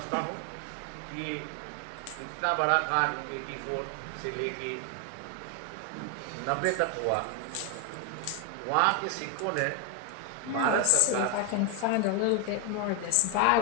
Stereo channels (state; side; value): different; both; correlation 0.01